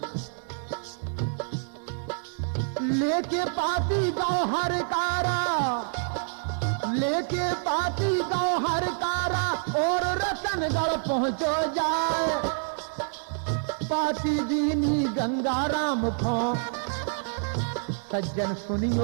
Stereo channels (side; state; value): left; silent; 60 dB below the other